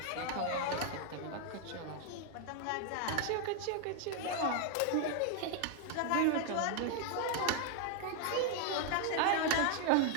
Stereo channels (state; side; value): different; both; correlation 0.00